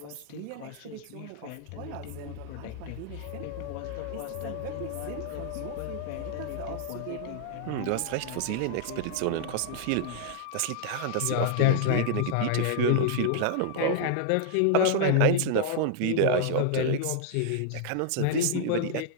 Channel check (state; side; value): different; both; correlation -0.01